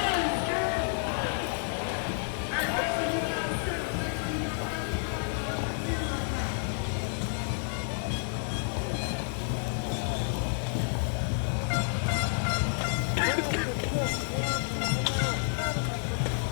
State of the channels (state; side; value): silent; right; 58 dB below the other